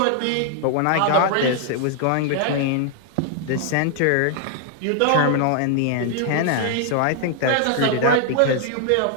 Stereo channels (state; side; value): different; both; correlation 0.00